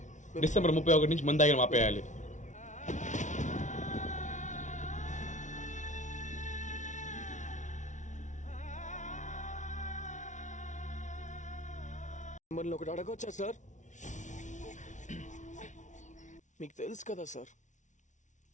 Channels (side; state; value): right; late; 0.36 ms